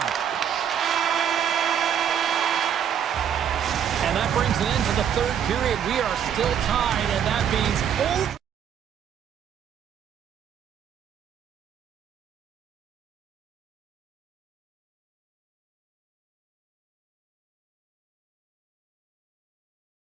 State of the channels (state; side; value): quieter; left; 8.7 dB